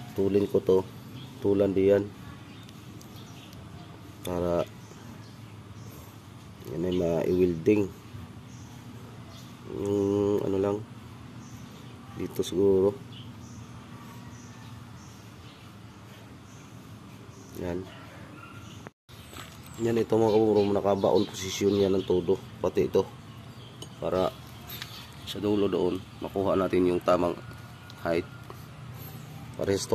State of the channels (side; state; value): both; identical; correlation 1.00